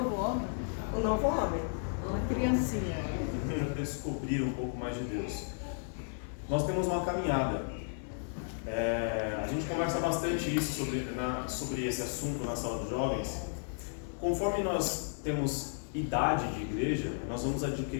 O novo homem. Uma criancinha. Para descobrir um pouco mais de Deus. Nós temos uma caminhada. A gente conversa bastante isso sobre esse assunto na sala dos jovens. Conforme nós temos idade de igreja, nós vamos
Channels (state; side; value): silent; right; digital silence